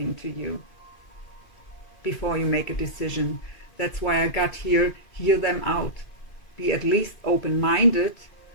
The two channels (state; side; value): late; right; 2.5 ms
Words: to you before you make a decision. That's why I got here, hear them out. Be at least open-minded